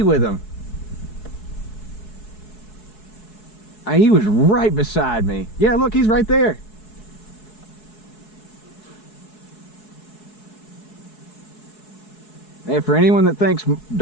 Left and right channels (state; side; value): late; right; 4.7 ms